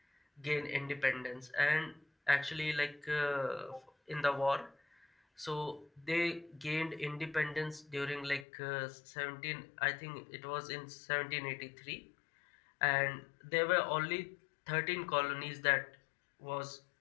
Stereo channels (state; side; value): drops out; right; at 8.5 s